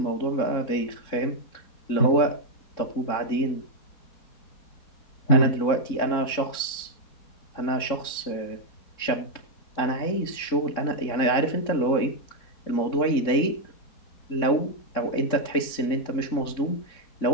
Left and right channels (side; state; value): right; late; 3.7 ms